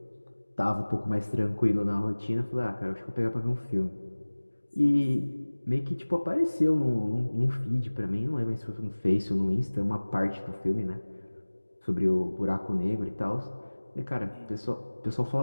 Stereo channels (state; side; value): inverted; both; correlation -1.00